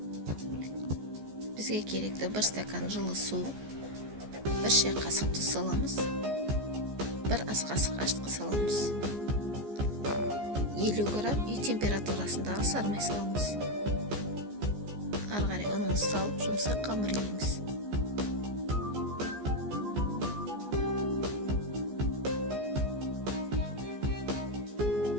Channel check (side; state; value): left; late; 14 ms